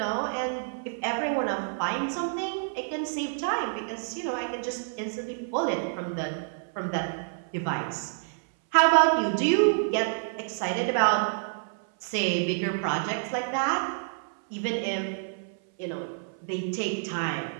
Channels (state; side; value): silent; left; 58 dB below the other